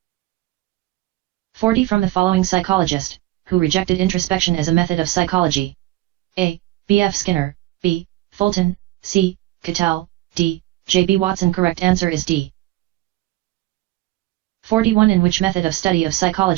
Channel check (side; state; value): left; quieter; 17.2 dB